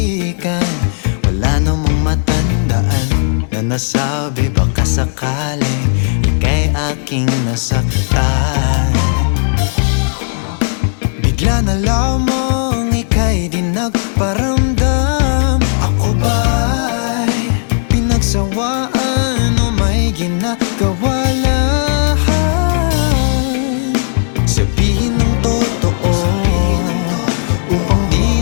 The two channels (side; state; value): right; silent; 70 dB below the other